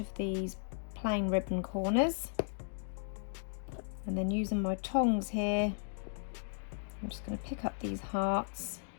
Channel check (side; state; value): right; silent; digital silence